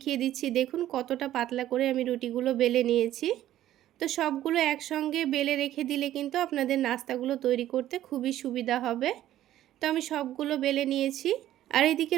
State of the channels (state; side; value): quieter; left; 13.0 dB